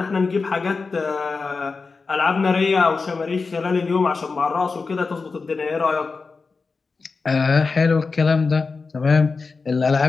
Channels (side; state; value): right; quieter; 4.4 dB